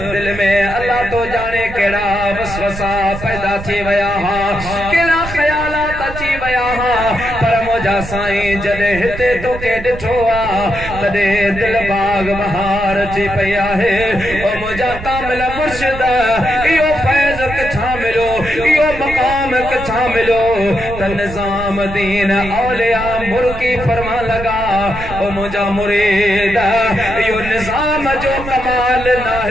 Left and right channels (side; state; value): right; noise; rumble, 10 dB below the sound